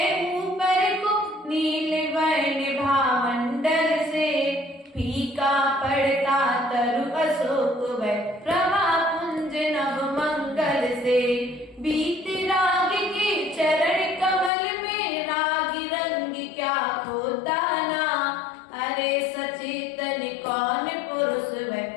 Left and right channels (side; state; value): right; drops out; at 14.5 s